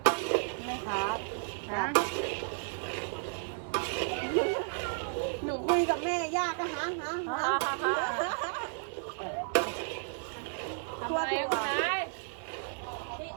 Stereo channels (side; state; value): left; silent; 56 dB below the other